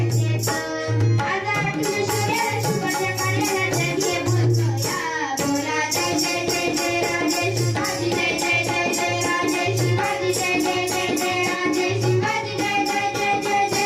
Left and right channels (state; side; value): identical; both; correlation 1.00